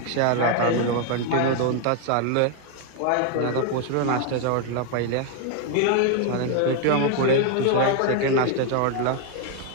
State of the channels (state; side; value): different; both; correlation 0.01